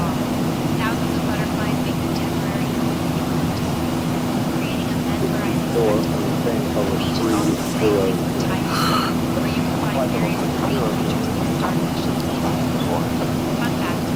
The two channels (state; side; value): identical; both; correlation 1.00